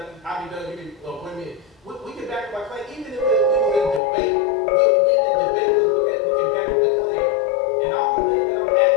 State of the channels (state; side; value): drops out; right; at 4.0 s